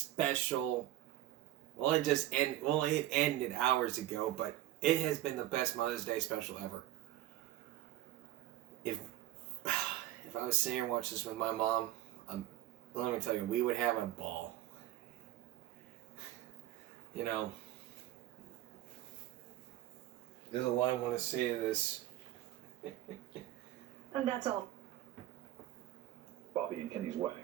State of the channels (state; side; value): quieter; left; 14.4 dB